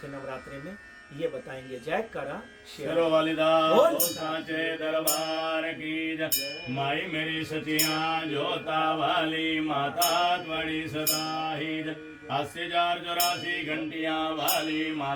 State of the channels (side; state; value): both; identical; correlation 1.00